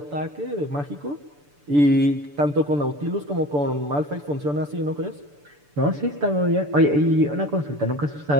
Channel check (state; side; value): late; left; 6.9 ms